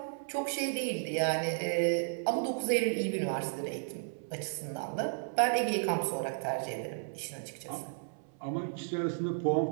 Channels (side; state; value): left; silent; 55 dB below the other